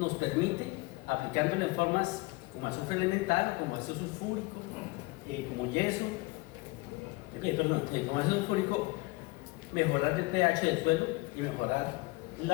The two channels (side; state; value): right; quieter; 23.6 dB